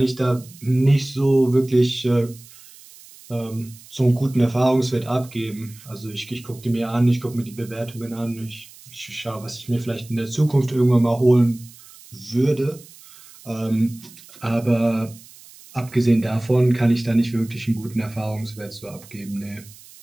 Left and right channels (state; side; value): noise; right; hiss, 21 dB below the sound